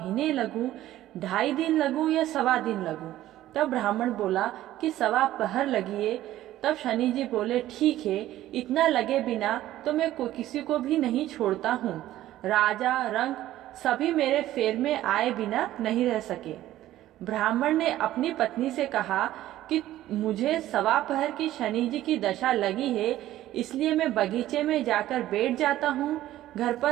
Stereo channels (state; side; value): quieter; left; 14.2 dB